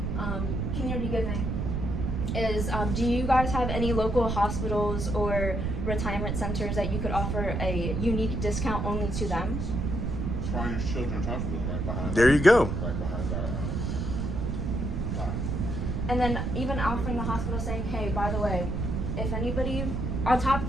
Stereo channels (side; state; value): right; noise; rumble, 1 dB below the sound